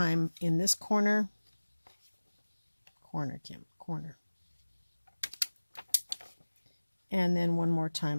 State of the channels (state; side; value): inverted; both; correlation -1.00